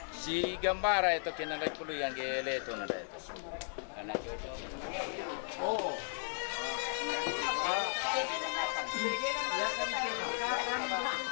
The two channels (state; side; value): silent; right; digital silence